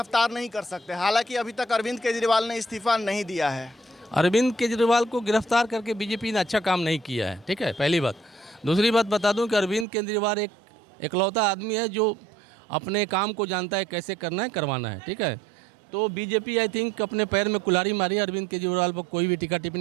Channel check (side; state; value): left; drops out; at 9.9 s